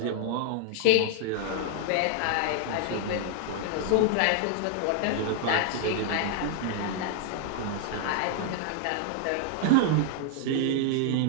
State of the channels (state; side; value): different; both; correlation 0.00